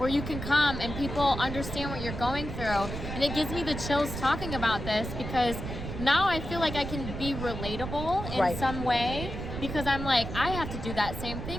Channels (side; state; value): right; noise; rumble, 6 dB below the sound